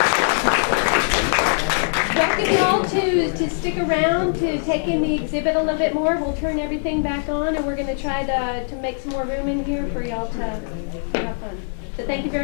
Welcome you all to stick around to take in the exhibit a little bit more. We'll turn everything back on, and we're going to try to make some more room in here for y'all to have fun. So thank you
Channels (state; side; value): silent; right; digital silence